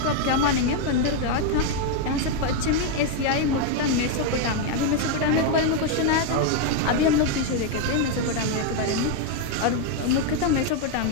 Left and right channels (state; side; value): different; both; correlation 0.01